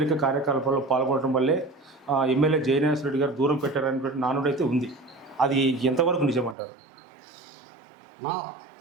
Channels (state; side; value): drops out; left; at 6.6 s